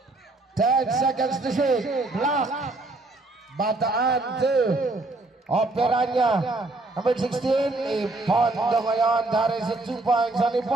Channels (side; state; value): left; quieter; 3.0 dB